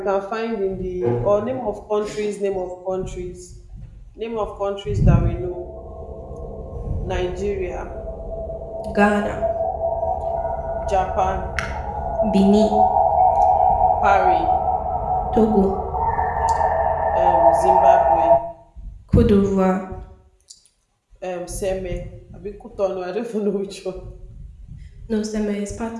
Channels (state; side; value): identical; both; correlation 1.00